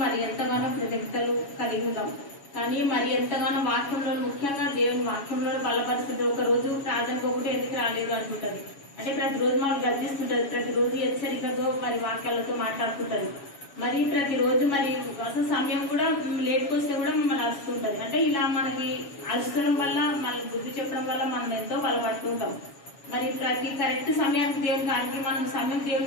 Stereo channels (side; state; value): right; late; 7.2 ms